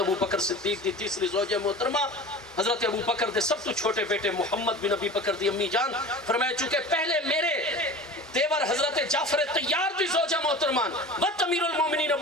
بکر صدیق دی تیسری زوجہ محترمہ حضرت ابو بکر دے سب تو چھوٹے بیٹے محمد بن ابی بکر دی امی جان فرمایا چونکہ پہلے میرے دیور حضرت جعفر طیار دی زوجہ محترمان بد امیر المومنین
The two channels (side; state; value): both; normal; correlation 0.36